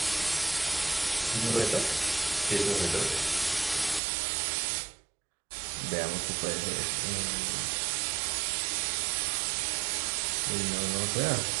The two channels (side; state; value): left; drops out; at 4.0 s